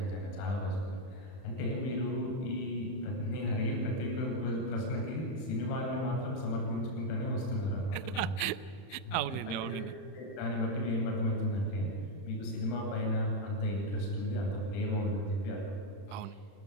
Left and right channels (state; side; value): late; right; 31 ms